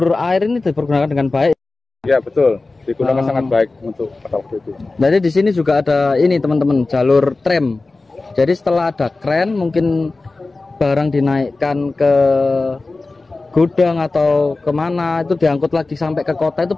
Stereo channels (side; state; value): right; quieter; 3.4 dB